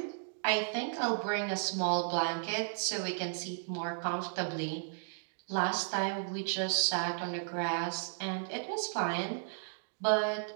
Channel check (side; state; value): left; silent; digital silence